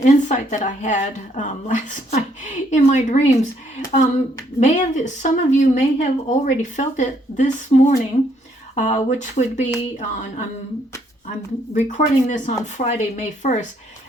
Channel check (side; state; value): both; normal; correlation 0.70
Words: that I had last night in my dreams. Some of you may have already felt it this morning, which would be on. I'm recording this on Friday, May 1st.